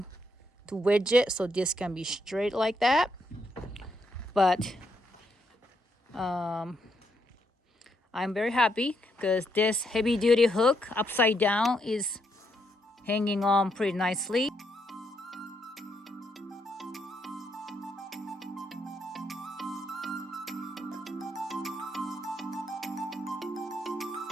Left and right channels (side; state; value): both; normal; correlation 0.77